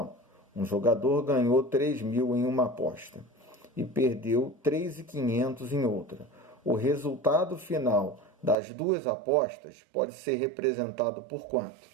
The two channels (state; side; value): drops out; left; at 8.6 s